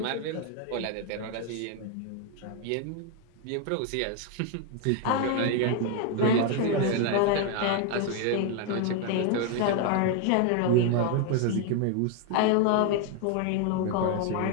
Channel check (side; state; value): both; different; correlation 0.00